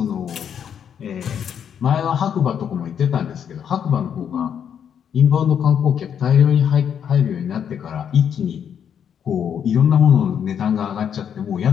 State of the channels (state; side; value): quieter; right; 8.3 dB